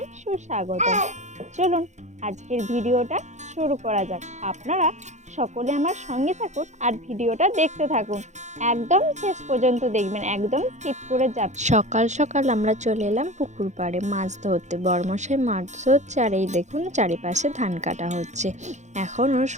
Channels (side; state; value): left; late; 0.34 ms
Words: সুস্বাগতম। চলুন আজকের ভিডিওটা শুরু করা যাক। আপনারা সকলে আমার সঙ্গে থাকুন আর ভিডিওটা দেখতে থাকুন। একদম শেষ পর্যন্ত দেখবেন, একদম স্কিপ করে যাবেন। সকাল সকাল আমরা চলে এলাম পুকুর পাড়ে মাছ ধরতে। বড়মশাই মাছ ধরছে আর এই দেখুন চারিপাশে ধান কাটা হচ্ছে। এখনও